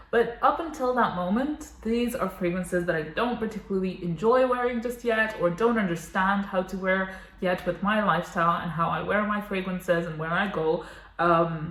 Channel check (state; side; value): identical; both; correlation 1.00